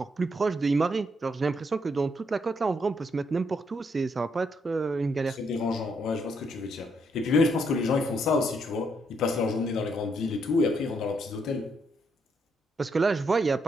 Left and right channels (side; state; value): both; normal; correlation 0.75